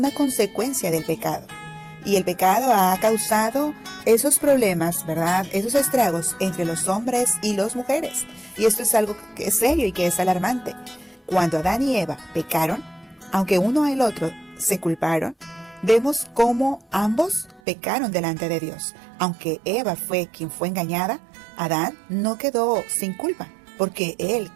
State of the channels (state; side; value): drops out; left; at 17.6 s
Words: consecuencia del pecado. Y el pecado ha causado esos problemas, ¿verdad? Esos estragos entre los hombres y las mujeres. Y esto es algo que es serio y que es alarmante. Cuando Adán y Eva pecaron, aunque uno y el otro se culparon, vemos cómo ambos pecaron delante de Dios. Aunque Eva fue quien fue engañada, Adán no quedó sin culpa, porque él